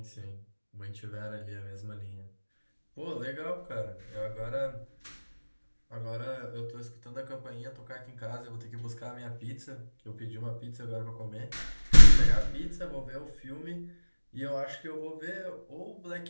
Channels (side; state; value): both; inverted; correlation -1.00